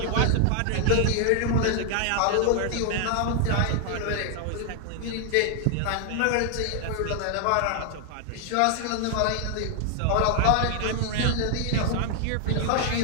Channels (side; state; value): both; different; correlation 0.00